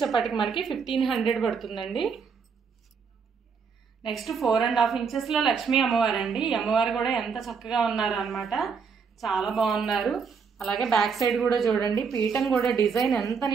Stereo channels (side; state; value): left; quieter; 5.8 dB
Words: మనకి 1500 పడుతుందండి. నెక్స్ట్ 4.5 ఇంచెస్ లో లక్ష్మీ అమ్మవారు అండి. ఈ అమ్మవారు కూడా ఎంత చక్కగా ఉన్నారు అనమాట. చాలా బాగున్నారు. అలాగే బ్యాక్ సైడ్ కూడా చూడండి. పీఠం కూడా డిజైన్ ఎంత